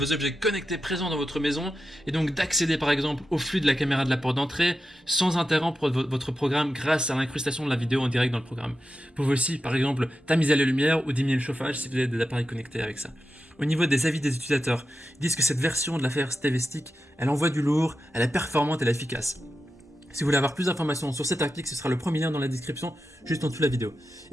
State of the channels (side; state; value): both; normal; correlation 0.90